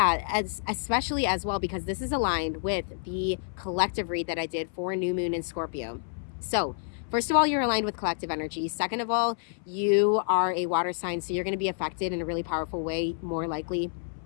especially as well, because this is aligned with the collective read that I did for new moon in Scorpio. So first of all, you're aligned with collective energy. Second of all, you are a water sign, so you're going to be affected in a really powerful way, more likely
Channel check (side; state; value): right; silent; 59 dB below the other